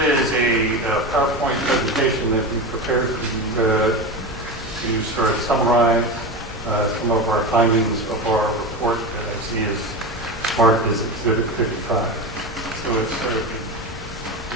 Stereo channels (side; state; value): both; normal; correlation 0.22